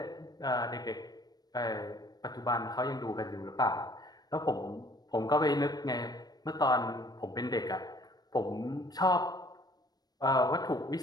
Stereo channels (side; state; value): right; late; 0.19 ms